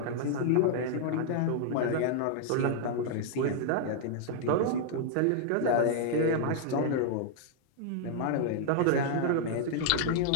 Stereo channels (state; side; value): different; both; correlation -0.01